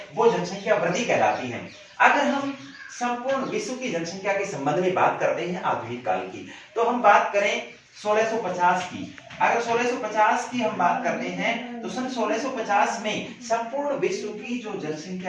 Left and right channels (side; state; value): both; identical; correlation 1.00